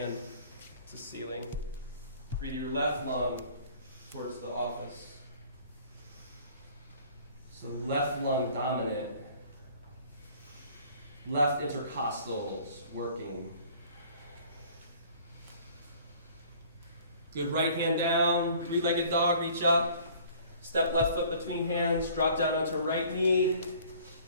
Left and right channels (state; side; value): inverted; both; correlation -0.52